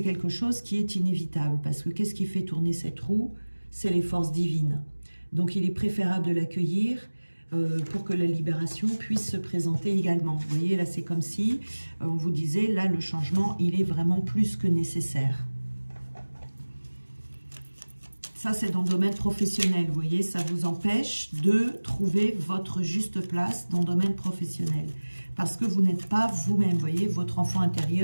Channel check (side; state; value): both; inverted; correlation -1.00